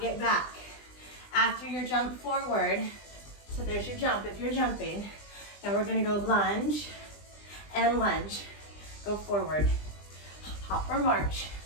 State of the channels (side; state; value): right; late; 20 ms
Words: it back. After your jump forward, so there's your jump if you're jumping. Now we're gonna go lunge and lunge. Go forward. Hop or march.